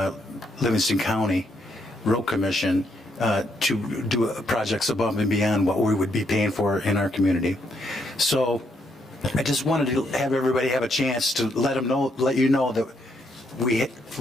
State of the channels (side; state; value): both; normal; correlation 0.75